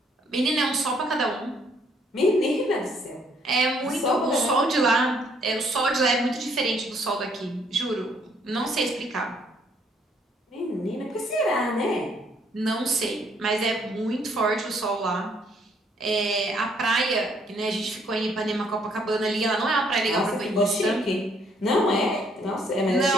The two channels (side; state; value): both; normal; correlation 0.66